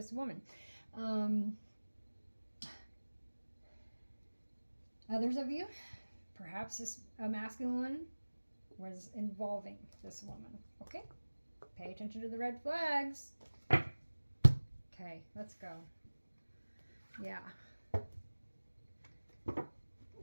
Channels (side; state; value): both; inverted; correlation -1.00